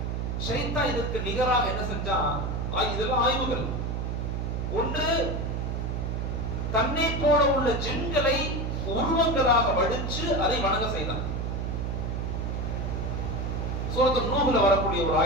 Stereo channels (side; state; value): right; noise; hum, 2 dB below the sound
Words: ஷைத்தான் இதற்கு நிகராக என்ன செஞ்சான்? இதெல்லாம் ஆய்வுகள். ஒன்று, தன்னை போல உள்ள ஜின்களை உருவங்களாக வடிச்சு அதை வணங்க செய்தான். சூரத்து நூஹ்ல வரக்கூடிய ஒரு